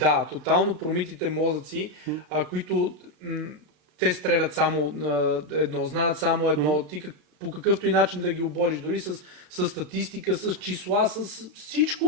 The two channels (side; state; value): left; late; 33 ms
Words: тотално промитите мозъци, които те стрелят само едно, знаят само едно, ти по какъвто и начин да ги обориш, дори с статистика, с числа, с